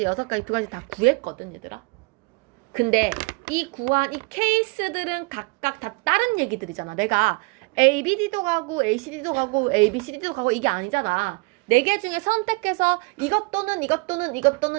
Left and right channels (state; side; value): quieter; left; 28.4 dB